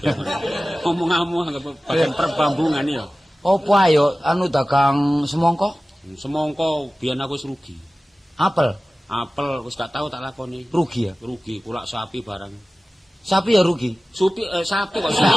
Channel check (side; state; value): both; normal; correlation 0.97